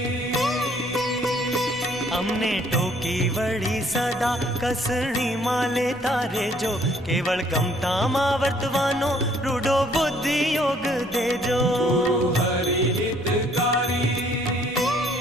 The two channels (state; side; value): noise; left; rumble, 25 dB below the sound